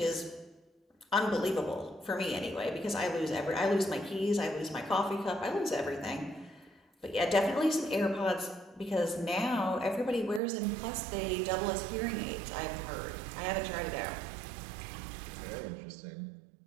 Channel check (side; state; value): left; drops out; at 10.4 s